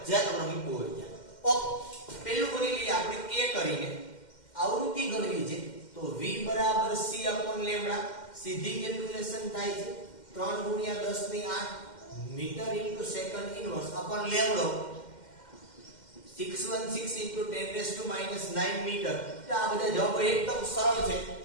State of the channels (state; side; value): late; right; 2.1 ms